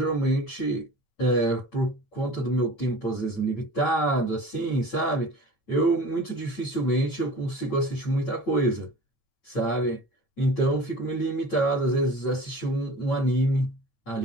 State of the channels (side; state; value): right; late; 8.9 ms